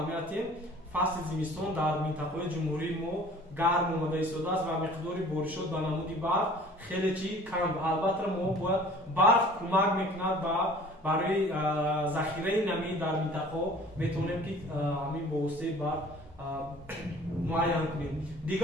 фасли зимистон дар минтақаҳои ҷумҳурӣ мо гарм омада истодааст ва миқдори боришот ба намуди барф хеле чи кам. албатта мо бояд барф кӯмак мекунад барои захираи намӣ дар минтақаҳо метавонем ки ҳамин бо воситаи барф муайян кунем.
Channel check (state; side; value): normal; both; correlation 0.49